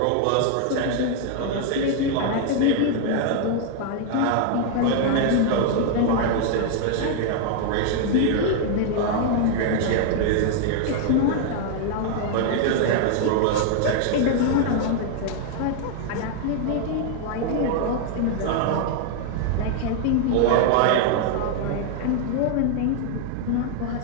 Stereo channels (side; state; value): both; different; correlation 0.00